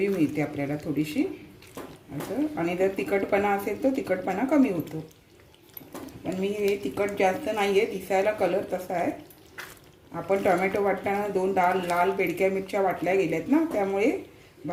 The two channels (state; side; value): identical; both; correlation 1.00